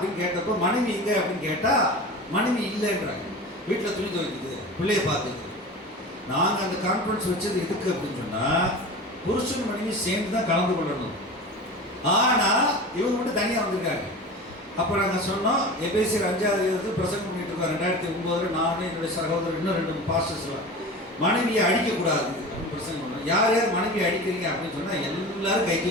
கேட்டப்போ, மனைவி எங்க அப்படின்னு கேட்டா மனைவி இல்லைன்றாங்க. வீட்டில் துணி துவைக்குது, பிள்ளைய பார்க்குது. நாங்கள் அந்த கான்ஃபரன்ஸ் வச்சது எதுக்கு அப்படின்னு சொன்னால், புருஷன் மனைவி சேர்ந்து தான் கலந்து கொள்ளணும். ஆனால் இவங்க மட்டும் தனியாக வந்திருக்காங்க. அப்போ நாங்கள் சொன்னோம், எபேசியர் 5வது பிரசங்கம் பண்ணிட்டு இருக்கோம் 2009. நான் என்னுடைய சகோதரர் இன்னும் 2 பாஸ்டர்ஸ்லாம் மனைவியை அடிக்கக்கூடாது அப்படின்னு பிரசங்கம் பண்ணோம். யார் யார் மனைவியை அடிக்கிறீங்க அப்படின்னு சொன்னால் எல்லாரும் கை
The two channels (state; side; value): normal; both; correlation 0.33